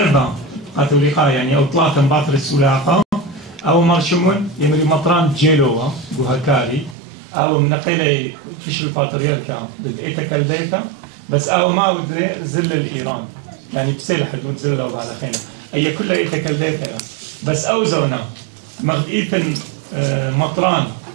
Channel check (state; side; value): drops out; left; at 7.0 s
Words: قاتوليقا يعني أو ثلاثة باطر السلاقة أو مرشمون يمري مطران جيلوة بوهكاري أو منقلة فيش الباتريالكا بدأت كالديتا بس أو ما ودلي زل الإيران يعني بسيل حدود زلوا على خينا هي كلها يتكلمها بس أو زونا مغيثن مطران